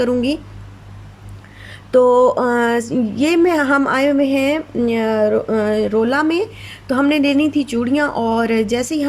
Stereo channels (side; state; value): both; identical; correlation 1.00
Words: तो ये में हम आए हुए हैं रोला में। तो हमने लेनी थी चूड़ियाँ और जैसे ही